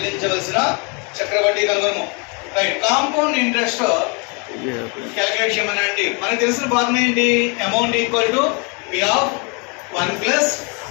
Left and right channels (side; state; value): right; quieter; 33.3 dB